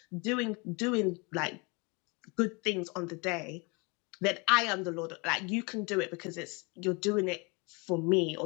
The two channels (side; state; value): right; quieter; 29.5 dB